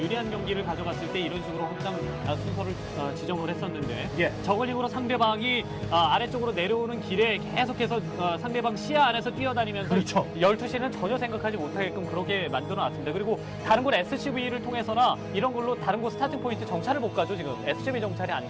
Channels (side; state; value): both; identical; correlation 1.00